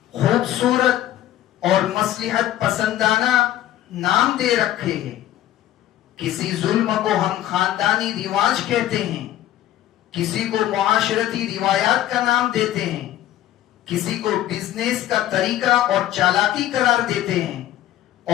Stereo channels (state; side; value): quieter; right; 13.2 dB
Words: خوبصورت اور مصلحت پسندانہ نام دے رکھے ہیں. کسی ظلم کو ہم خاندانی رواج کہتے ہیں، کسی کو معاشرتی روایات کا نام دیتے ہیں، کسی کو بزنس کا طریقہ اور چالاکی قرار دیتے ہیں،